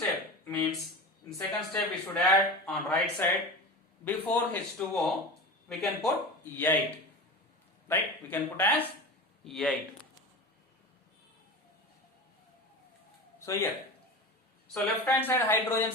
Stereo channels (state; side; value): normal; both; correlation 0.29